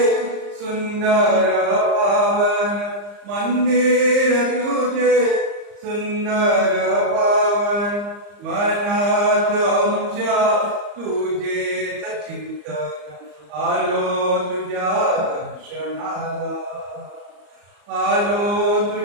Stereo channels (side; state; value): left; late; 34 ms